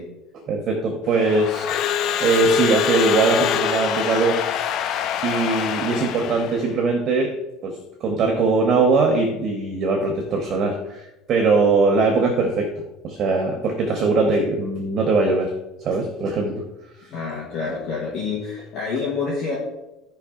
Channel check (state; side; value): normal; both; correlation 0.46